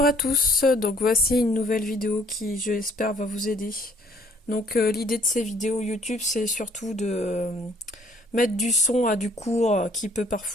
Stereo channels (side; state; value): both; normal; correlation 0.61